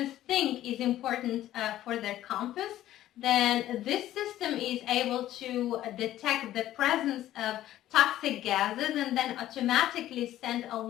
think is important for their campus. Then this system is able to detect the presence of toxic gases and then automatically send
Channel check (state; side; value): quieter; right; 13.5 dB